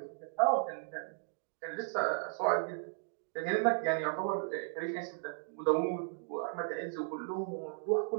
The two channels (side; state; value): left; silent; digital silence